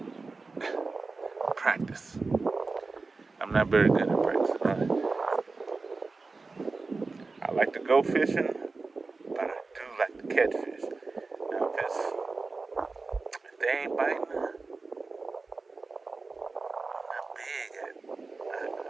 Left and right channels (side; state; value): left; quieter; 3.9 dB